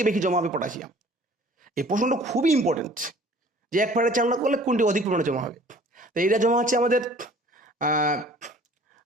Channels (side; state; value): both; normal; correlation 0.51